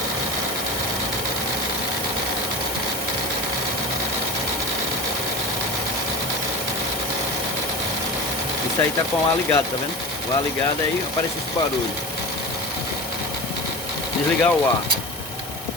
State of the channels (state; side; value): normal; both; correlation 0.31